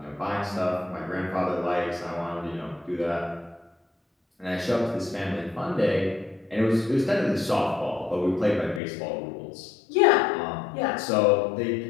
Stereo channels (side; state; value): right; drops out; at 8.8 s